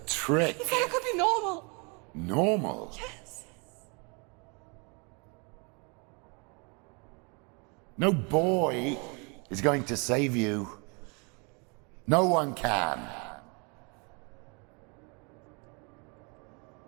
trick. He said I could be normal. Normal. Yes. No boy is going to save you. No one can.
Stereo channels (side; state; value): left; quieter; 32.6 dB